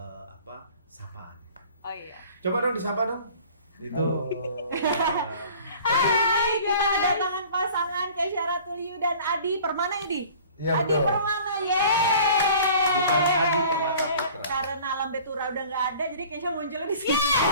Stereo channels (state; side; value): inverted; both; correlation -0.47